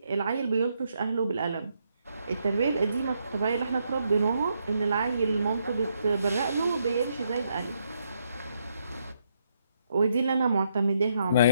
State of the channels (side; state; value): both; inverted; correlation -0.76